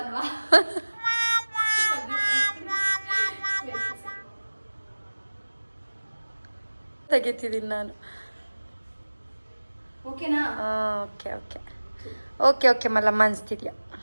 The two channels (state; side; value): inverted; both; correlation -1.00